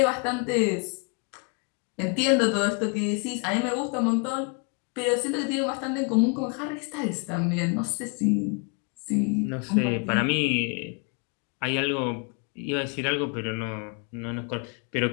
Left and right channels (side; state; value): right; quieter; 35.4 dB